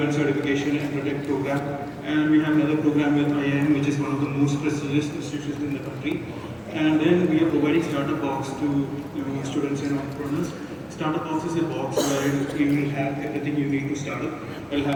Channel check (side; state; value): both; identical; correlation 1.00